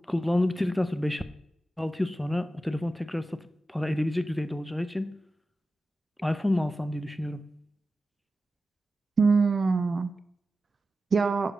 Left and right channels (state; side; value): normal; both; correlation 0.93